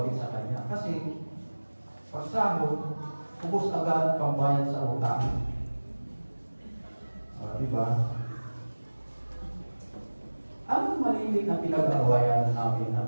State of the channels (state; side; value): inverted; both; correlation -1.00